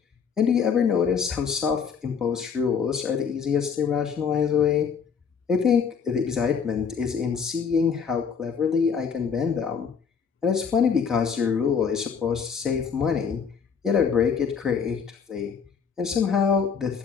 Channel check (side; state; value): right; quieter; 6.4 dB